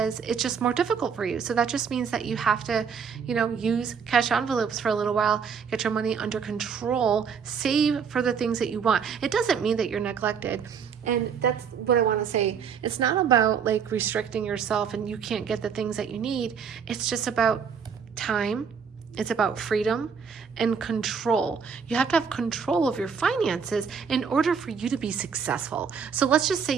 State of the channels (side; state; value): left; quieter; 6.6 dB